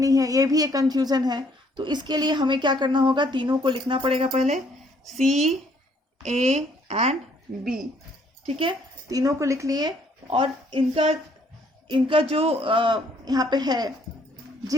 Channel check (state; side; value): normal; both; correlation 0.65